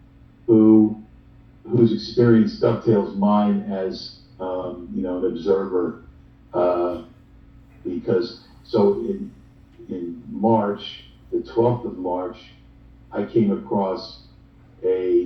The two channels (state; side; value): identical; both; correlation 1.00